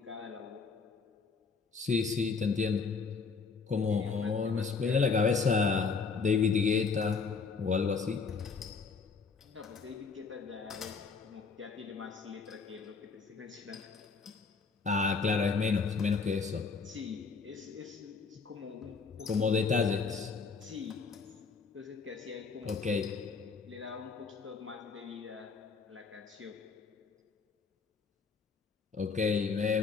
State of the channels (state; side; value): quieter; right; 5.0 dB